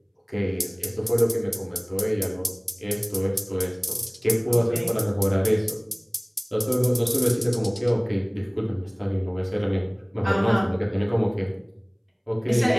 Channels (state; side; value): identical; both; correlation 1.00